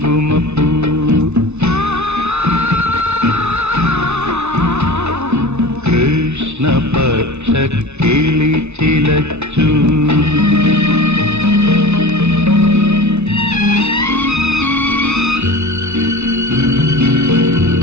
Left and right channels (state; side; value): late; left; 0.81 ms